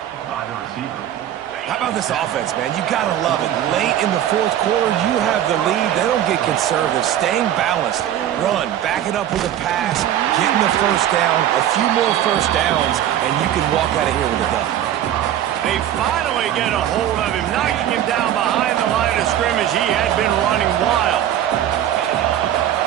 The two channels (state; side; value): quieter; left; 11.3 dB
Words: How about this offense, man? You got to love it. Late in the fourth quarter, you have the lead. They don't get conservative. Staying balanced. Run. Back it up with a pass. Getting the first down. A few more first downs, and you can walk out of here with a dub. They finally get a hold of him, knocking him down behind the line of scrimmage. He had been running wild.